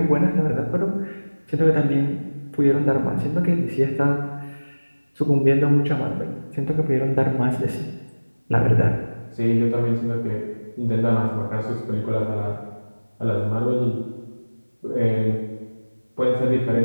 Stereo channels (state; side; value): inverted; both; correlation -1.00